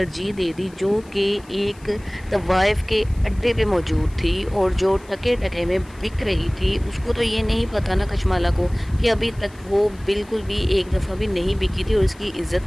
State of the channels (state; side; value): noise; left; hiss, 26 dB below the sound